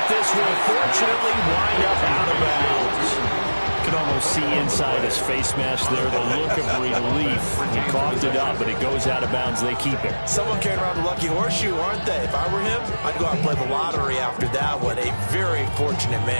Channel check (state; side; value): inverted; both; correlation -1.00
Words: this will fortunately wind up out of bounds. You can almost see inside his face mask there the look of relief. He coughed it up, but it goes out of bounds. They keep it. Someone carrying around the lucky horseshoe, aren't they? If I were him, I'd go out and play the lottery after that one. A very fortunate